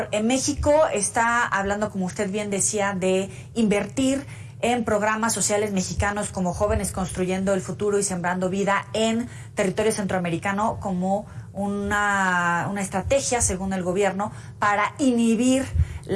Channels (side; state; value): both; identical; correlation 1.00